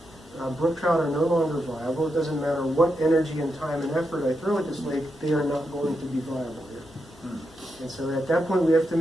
brook trout are no longer viable. It doesn't matter what energy and time and effort I throw at this lake, they are not going to be viable here. And so at that point, we have to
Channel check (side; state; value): both; normal; correlation 0.85